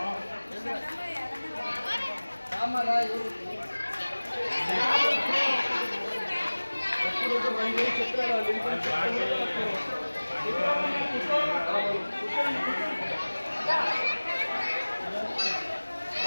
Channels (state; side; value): inverted; both; correlation -1.00